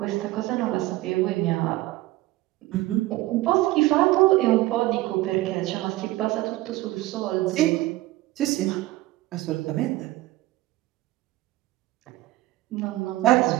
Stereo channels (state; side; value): quieter; left; 18.0 dB